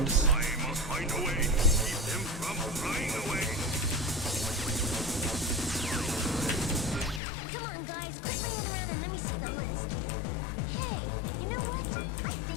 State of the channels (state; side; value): drops out; right; at 7.2 s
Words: Come on, guys, quit laying around and let me see the list. Hey, you know what? I